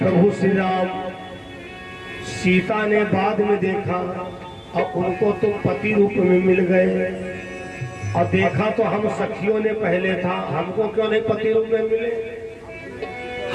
श्री राम। सीता ने बाद में देखा और उनको तो पति रूप में मिल गए, और देखा तो हम सखियों ने पहले था, हमको क्यों नहीं पति रूप में मिले?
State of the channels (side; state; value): both; identical; correlation 1.00